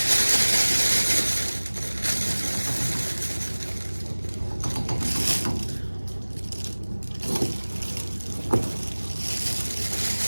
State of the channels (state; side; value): inverted; both; correlation -1.00